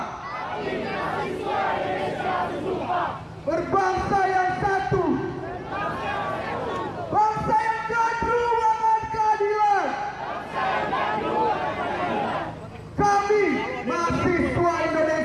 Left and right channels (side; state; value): both; identical; correlation 1.00